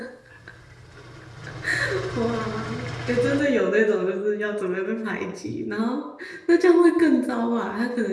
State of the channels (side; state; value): both; identical; correlation 1.00